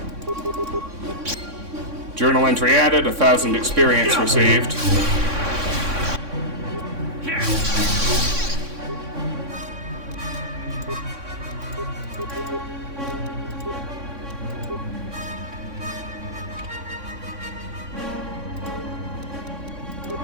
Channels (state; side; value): late; left; 3.6 ms